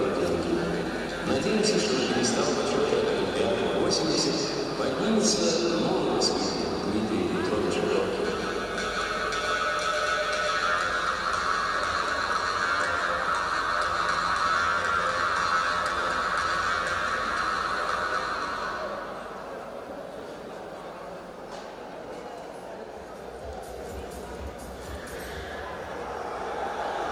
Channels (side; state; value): both; identical; correlation 1.00